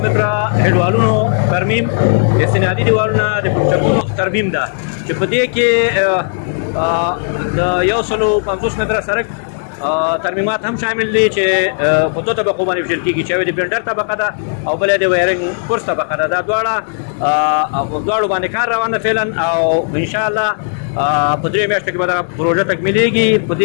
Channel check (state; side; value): silent; right; digital silence